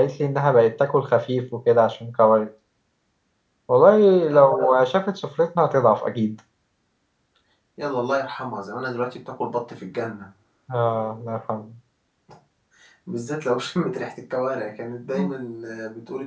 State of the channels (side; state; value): both; identical; correlation 1.00